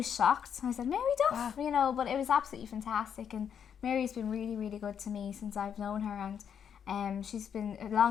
shocked. I said, Mary Duff, but it was absolutely fantastic. And Mary's been really, really good to me since I've known her, and she's been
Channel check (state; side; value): quieter; right; 8.1 dB